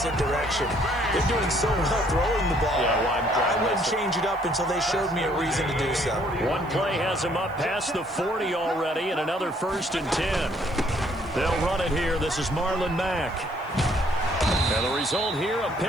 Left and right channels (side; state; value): right; noise; hiss, 29 dB below the sound